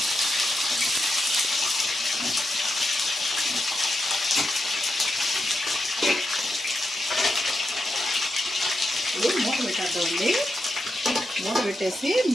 మూత పెట్టేద్దామండి. మూత పెట్టేసి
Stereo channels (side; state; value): both; normal; correlation 0.86